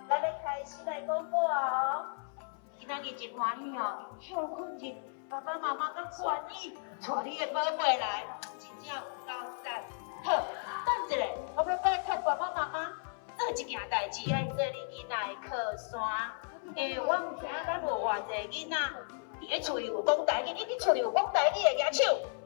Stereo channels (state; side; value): silent; right; 55 dB below the other